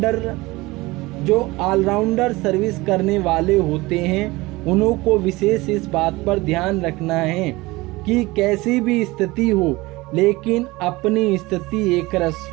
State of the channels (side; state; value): left; quieter; 21.2 dB